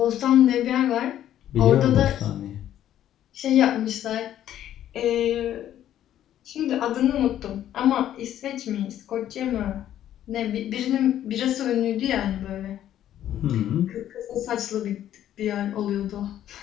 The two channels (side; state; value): right; quieter; 11.5 dB